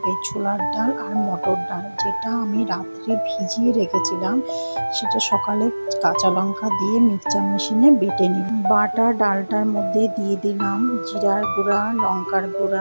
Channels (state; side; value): inverted; both; correlation -1.00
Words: ছোলার ডাল আর মটর ডাল, যেটা আমি রাত্রে ভিজিয়ে রেখেছিলাম। সেটা সকালে কাঁচা লঙ্কা দিয়ে মিক্সচার মেশিনে বেটে নিলাম। বাটা ডালটার মধ্যে দিয়ে দিলাম জিরার গুঁড়া, লঙ্কার